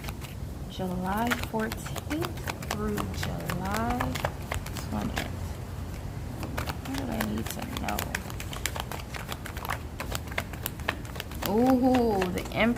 July 14th through July 20th. What do I need to know? Ooh, the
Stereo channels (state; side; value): identical; both; correlation 1.00